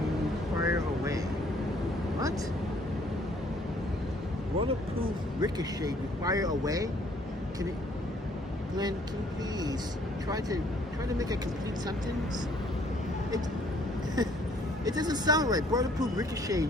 fire away. What? Waterproof ricochet fire away? Glenn, can you please try to make a complete sentence? It doesn't sound right. Waterproof ricochet,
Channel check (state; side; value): normal; both; correlation 0.62